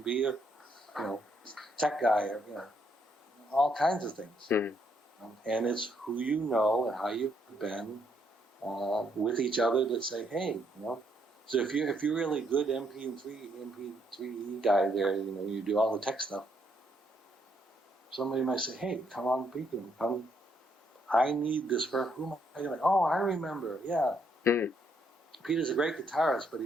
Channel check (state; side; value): normal; both; correlation 0.73